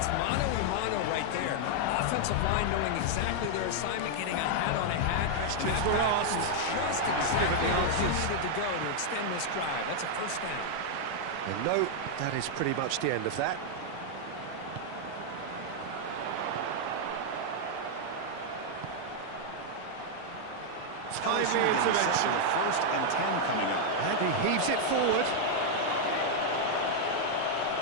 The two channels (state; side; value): different; both; correlation -0.01